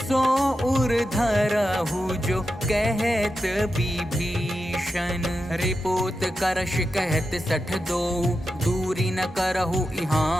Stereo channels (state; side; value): normal; both; correlation 0.89